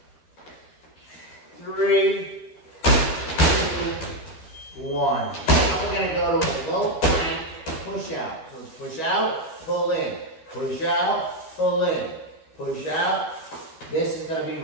3, 2, 1. Now we're gonna go to a low plank push out. So push out, pull in. Push out, pull in. Push out. This is gonna be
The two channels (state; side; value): late; right; 13 ms